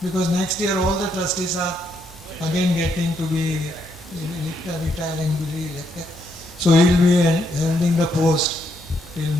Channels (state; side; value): normal; both; correlation 0.76